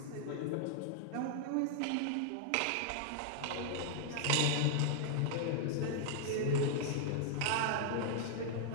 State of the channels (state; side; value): different; both; correlation -0.01